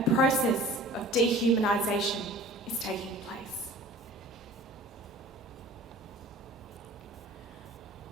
process of dehumanisation is taking place.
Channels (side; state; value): both; normal; correlation 0.44